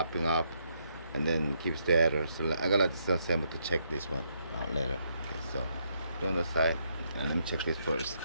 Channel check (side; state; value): both; inverted; correlation -0.75